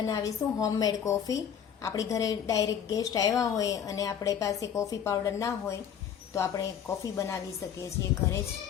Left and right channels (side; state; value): right; quieter; 8.5 dB